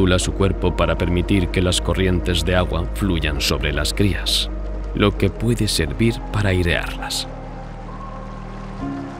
su cuerpo para permitir que las corrientes de agua fluyan sobre las crías, lo que puede servir para airearlas.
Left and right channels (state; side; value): identical; both; correlation 1.00